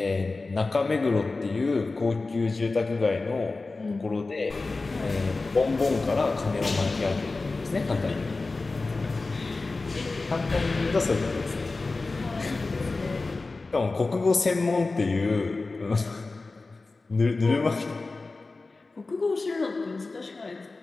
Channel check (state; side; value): quieter; right; 3.6 dB